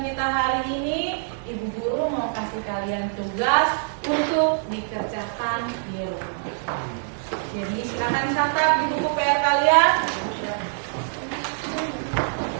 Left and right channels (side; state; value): left; silent; digital silence